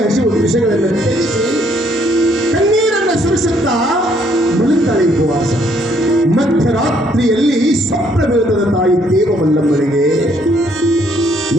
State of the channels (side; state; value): both; normal; correlation 0.67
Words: ಹಸಿವು ವಿಷಯಗಳನ್ನು ತ್ಯಜಿಸಿ ಕಣ್ಣೀರನ್ನು ಸುರಿಸುತ್ತಾ ಮಲಗ್ತಾಳೆ ಉಪವಾಸ. ಮಧ್ಯರಾತ್ರಿಯಲ್ಲಿ ಸ್ವಪ್ನ ಬೀಳುತ್ತದೆ ತಾಯಿ ದೇವ ಮಲ್ಲಮ್ಮನಿಗೆ.